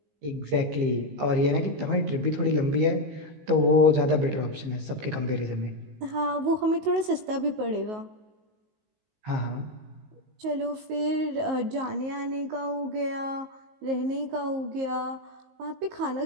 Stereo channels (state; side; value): late; left; 19 ms